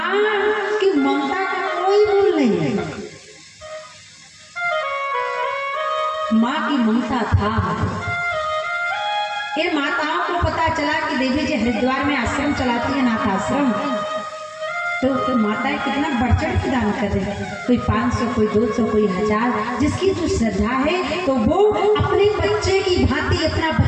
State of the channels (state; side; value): identical; both; correlation 1.00